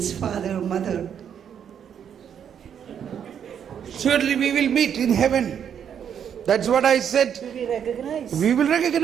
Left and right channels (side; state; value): left; quieter; 8.4 dB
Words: father, mother? Surely we will meet in heaven. That's what I said. Will we recognize? We will